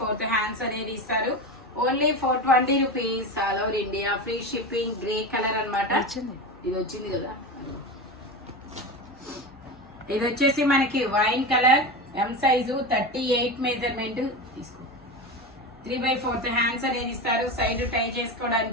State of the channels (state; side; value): normal; both; correlation 0.23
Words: హ్యాండ్స్ అనేది ఇస్తారు. Only 420 rupees all over India, free shipping. Grey colour అనమాట. ఇది వచ్చింది కదా. ఇది వచ్చేసి మనకి wine colour, M size 38 measurement తీసుకో. 3/4 హ్యాండ్స్ అనేది ఇస్తారు. సైడ్ టై